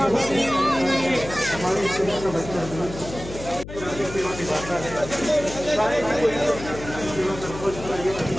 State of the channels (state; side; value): noise; left; hum, 12 dB below the sound